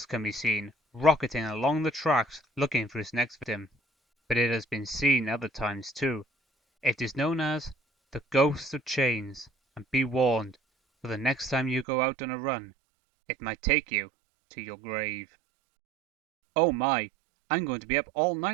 can be seen rocketing along the tracks looking for its next victim. But it has been seen other times too. It is known as the Ghost of Chains, and be warned, for the next time you go out on a run, it might take you to your grave. Oh my, I'm going to be up all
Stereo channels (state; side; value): drops out; left; at 11.9 s